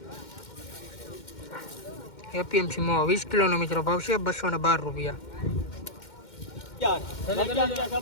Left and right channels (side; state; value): right; late; 2.1 ms